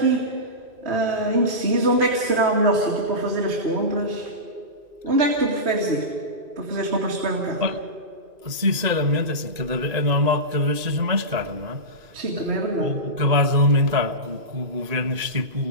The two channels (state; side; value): late; left; 2.5 ms